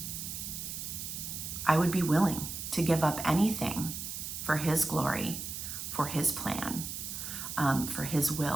to give up anything for his glory, for his plan, for his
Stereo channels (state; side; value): noise; right; hiss, 6 dB below the sound